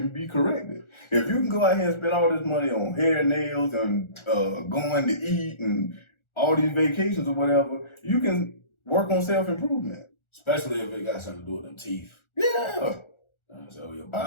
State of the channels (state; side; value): late; right; 1.4 ms